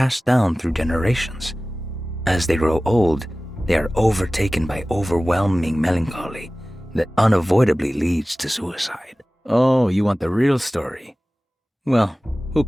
down through generations. As they grow old, they are overtaken by overwhelming melancholy that unavoidably leads to suicide. Oh, you want the real story? Well, who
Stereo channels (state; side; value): normal; both; correlation 0.97